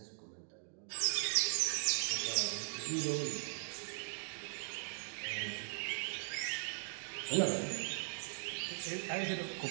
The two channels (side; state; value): left; silent; digital silence